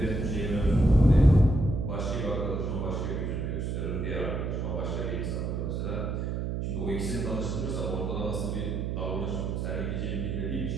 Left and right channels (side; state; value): right; noise; hum, 2 dB below the sound